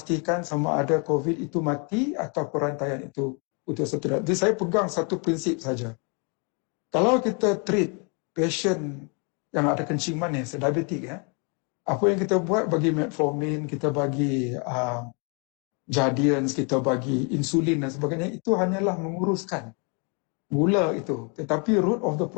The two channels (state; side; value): quieter; right; 35.4 dB